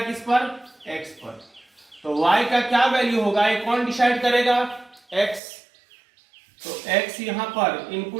किस पर, x पर। तो y का क्या वैल्यू होगा, ये कौन डिसाइड करेगा, x। तो x यहां पर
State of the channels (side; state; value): left; drops out; at 5.4 s